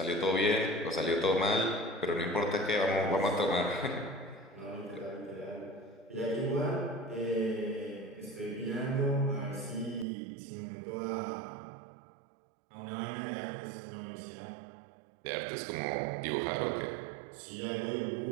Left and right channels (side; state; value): left; drops out; at 10.1 s